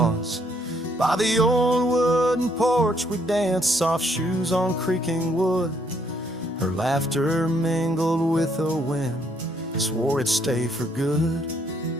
By the old wooden porch we danced, soft shoes on creaking wood. Her laughter mingled with the wind, swore it'd stay for good.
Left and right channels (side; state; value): both; normal; correlation 0.69